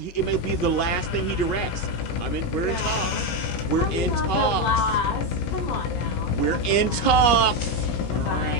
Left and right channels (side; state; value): right; late; 17 ms